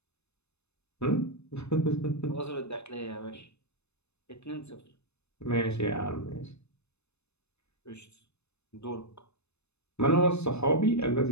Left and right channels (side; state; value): right; late; 0.81 ms